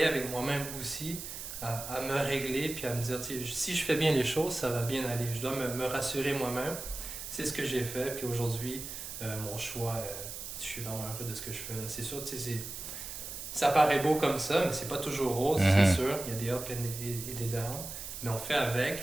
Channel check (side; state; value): right; noise; hiss, 8 dB below the sound